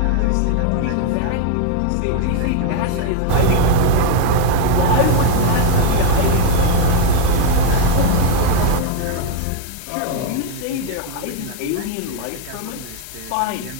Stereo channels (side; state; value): both; different; correlation 0.01